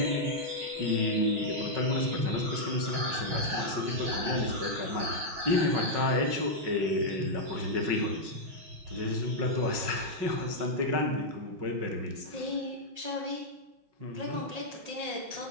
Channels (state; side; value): late; left; 5.4 ms